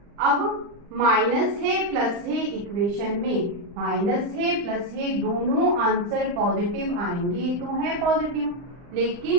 अब माइनस है प्लस है, इक्वेशन में माइनस है प्लस है, दोनों आंसर पॉजिटिव आएंगे, तो है पॉजिटिव।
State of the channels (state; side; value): late; left; 40 ms